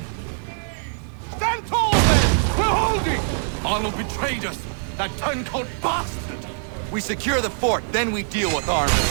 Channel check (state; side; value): silent; left; 63 dB below the other